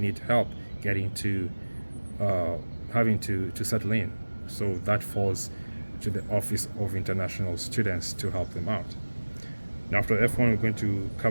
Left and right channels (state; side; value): inverted; both; correlation -1.00